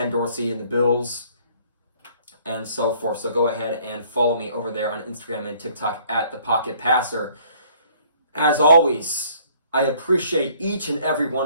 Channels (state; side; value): inverted; both; correlation -0.59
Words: Dorsey and the Bills, and so forth. So go ahead and follow me over there on Instagram and TikTok at The Pocket Passer. As always, I appreciate each and every one